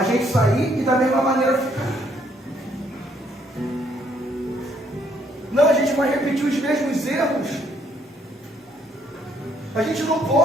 gente sair e da mesma maneira ficar. Não, a gente vai repetir os mesmos erros. A gente não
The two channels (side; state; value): both; normal; correlation 0.68